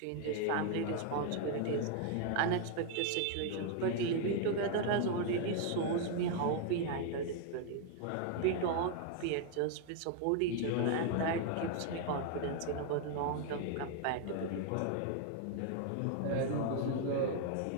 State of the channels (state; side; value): different; both; correlation 0.00